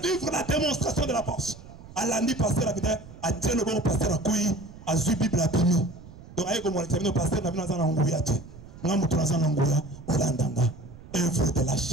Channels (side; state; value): right; noise; rumble, 17 dB below the sound